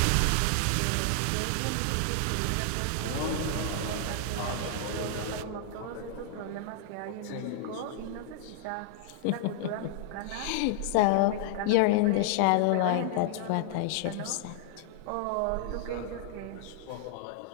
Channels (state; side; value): different; both; correlation -0.01